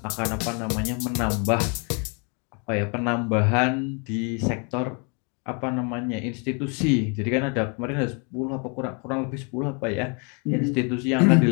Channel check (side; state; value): right; quieter; 35.4 dB